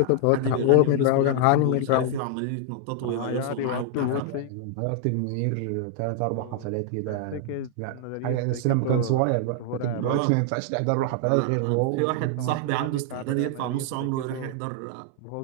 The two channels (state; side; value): different; both; correlation 0.00